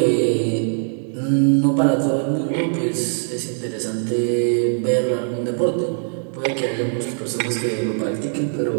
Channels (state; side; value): silent; left; digital silence